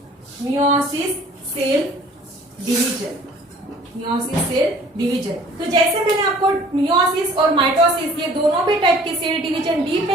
cell division, meiosis cell division. तो जैसे मैंने आपको मियोसिस और माइटोसिस ये दोनों भी टाइप के सेल डिवीजन डीप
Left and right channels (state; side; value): normal; both; correlation 0.52